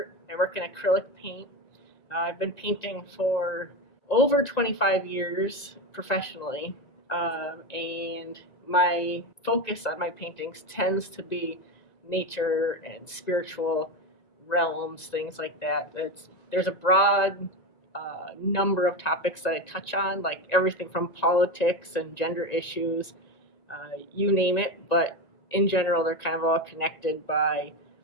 I work in acrylic paint. I've been painting for over 25 years professionally, and my focus on my paintings tends to be nature and spiritual realms, things like that. There's a broad number of topics that I touch on, like everything from politics and gender issues, you name it, but in general, they're kind of all connected by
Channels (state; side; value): late; right; 1.9 ms